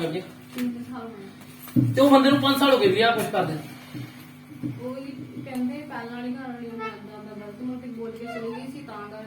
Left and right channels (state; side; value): identical; both; correlation 1.00